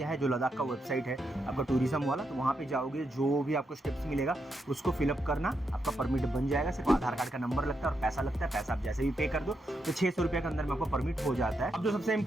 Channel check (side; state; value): both; normal; correlation 0.82